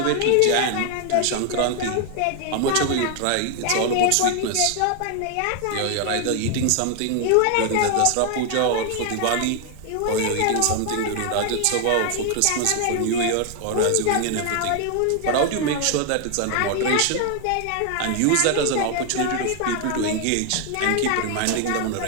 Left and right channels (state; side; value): different; both; correlation 0.00